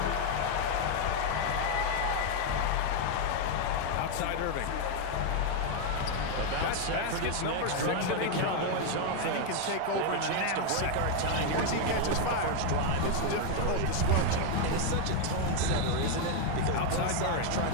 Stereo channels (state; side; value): different; both; correlation 0.01